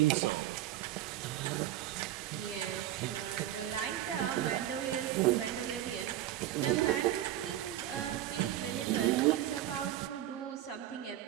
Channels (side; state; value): left; quieter; 13.0 dB